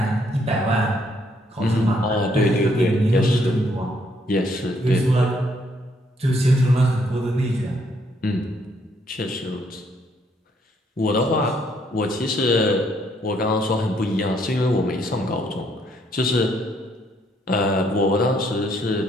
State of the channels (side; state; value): both; normal; correlation 0.69